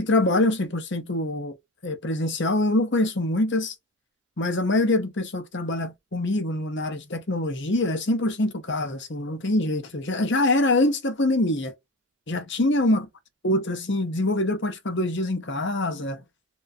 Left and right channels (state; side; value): normal; both; correlation 0.31